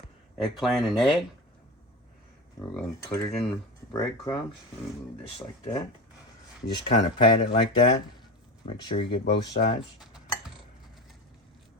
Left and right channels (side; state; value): both; normal; correlation 0.25